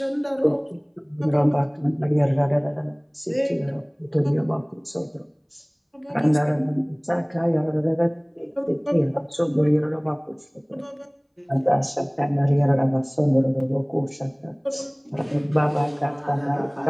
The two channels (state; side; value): identical; both; correlation 1.00